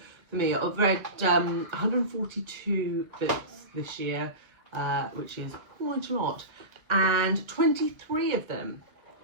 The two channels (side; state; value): left; late; 1.4 ms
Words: for me. I've read 142 books this year, which is quite a lot, and 23 of them